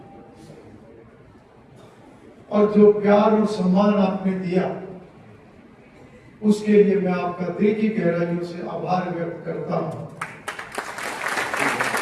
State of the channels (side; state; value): both; identical; correlation 1.00